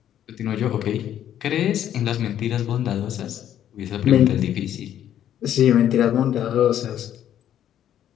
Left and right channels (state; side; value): quieter; right; 10.8 dB